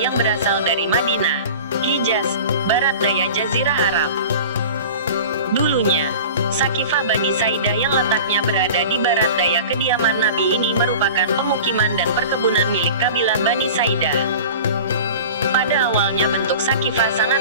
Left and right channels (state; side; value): inverted; both; correlation -0.37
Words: berasal dari Madinah, Hijaz, barat daya Jazirah Arab. Dulunya, Sakifah Bani Saidah yang letaknya berada di barat daya kediaman Nabi ini merupakan pemukiman dan perkebunan milik kabilah Bani Saidah. Pada awalnya bentuk Sakifah